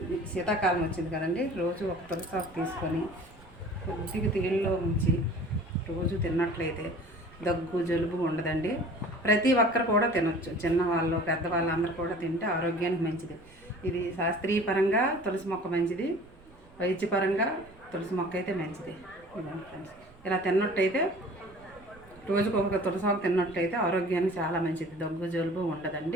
శీతాకాలం వచ్చింది కదండి, రోజు ఒక తులసి ఆకు తీసుకొని కొద్దిగా తీళ్ళలో ఉంచి రోజు తిన్నట్లయితే దగ్గు జలుబు ఉండదండి. ప్రతి ఒక్కరు కూడా తినొచ్చు, చిన్నవాళ్ళు పెద్దవాళ్ళు అందరూ కూడా తింటే ఆరోగ్యానికి మంచిది. ఇది శాస్త్రీయపరంగా తులసి మొక్క మంచిది, వైద్యపరంగా తులసి మొక్క అయితే మంచిది. ఇదండి ఫ్రెండ్స్, ఇలా తిన్నట్టయితే రోజుకు ఒక తులసాకు తిన్నట్టయితే ఆరోగ్యానికి చాలా మంచిది, దగ్గు జలుబు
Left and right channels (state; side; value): noise; right; rumble, 25 dB below the sound